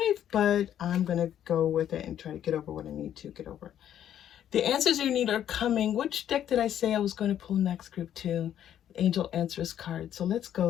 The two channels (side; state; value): right; quieter; 10.5 dB